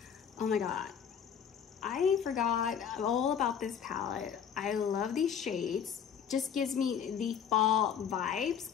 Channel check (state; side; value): quieter; right; 7.8 dB